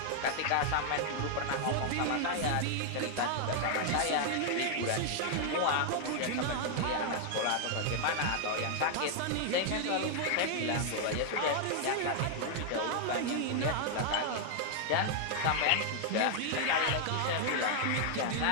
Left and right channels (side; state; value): both; different; correlation 0.00